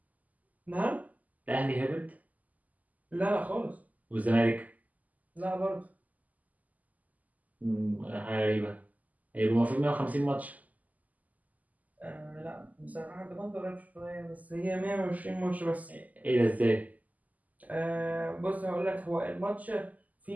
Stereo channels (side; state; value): left; late; 0.078 ms